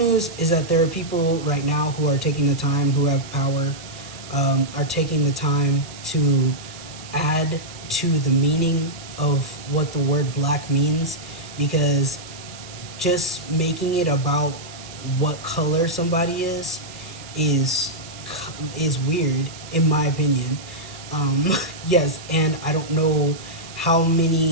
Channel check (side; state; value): right; noise; hiss, 16 dB below the sound